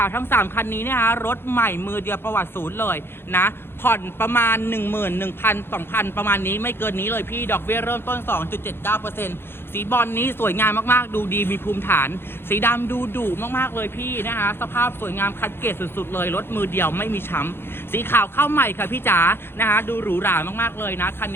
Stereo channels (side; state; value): right; late; 0.11 ms